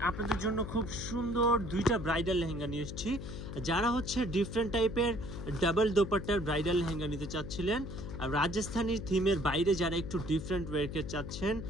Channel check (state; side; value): noise; left; hum, 8 dB below the sound